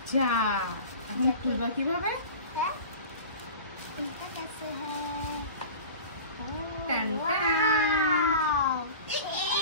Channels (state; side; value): inverted; both; correlation -0.37